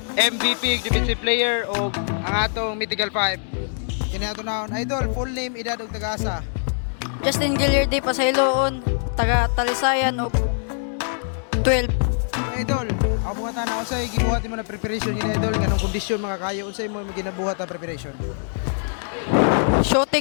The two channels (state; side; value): silent; right; 61 dB below the other